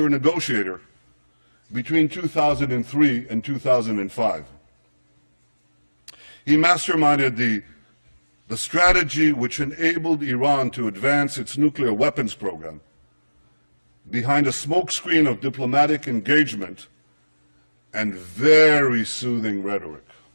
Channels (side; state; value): both; inverted; correlation -1.00